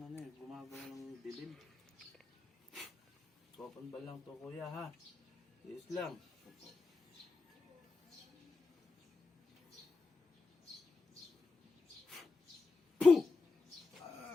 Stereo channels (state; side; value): quieter; right; 3.9 dB